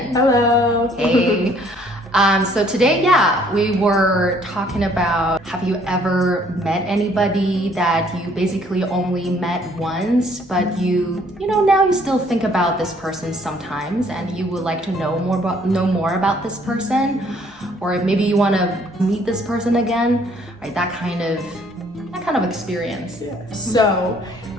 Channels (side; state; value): both; normal; correlation 0.62